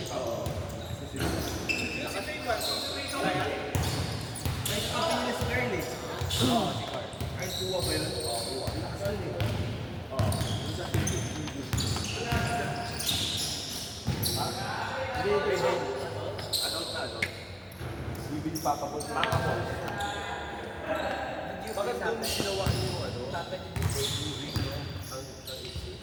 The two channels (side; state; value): both; identical; correlation 1.00